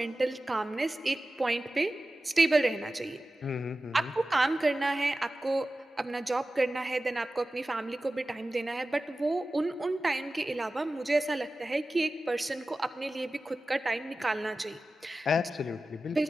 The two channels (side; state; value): both; normal; correlation 0.95